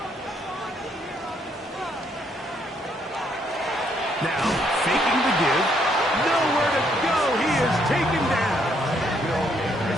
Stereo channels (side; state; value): both; normal; correlation 0.71